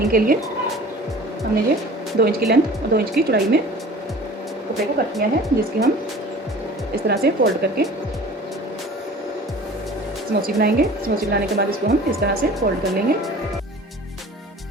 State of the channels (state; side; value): normal; both; correlation 0.43